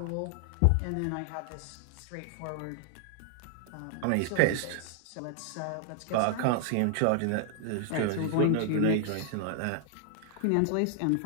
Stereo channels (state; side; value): different; both; correlation 0.00